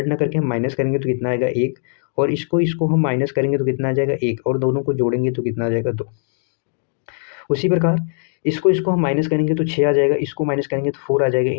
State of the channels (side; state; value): right; silent; digital silence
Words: ना करके हम माइनस करेंगे तो कितना आएगा 1, और इसको हम माइनस करेंगे तो कितना आ जाएगा 1, और दोनों को जोड़ेंगे तो कितना आ जाएगा 2। उसी प्रकार इसको हम माइनस करेंगे तो 6 आ जाएगा, इसको माइनस करेंगे तो 4 आ जाएगा,